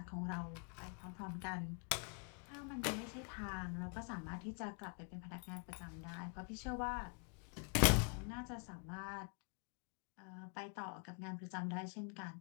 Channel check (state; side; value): quieter; right; 38.3 dB